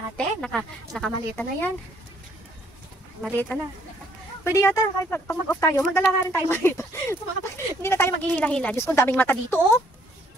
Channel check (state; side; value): normal; both; correlation 0.65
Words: nakamalita na yan. Malita na. Pwede yata, kahit pag mag-off tayo, magdala nga rin tayo malita. Hindi na tayo maghihila-hila. Diyos ko, daming mata dito, oh.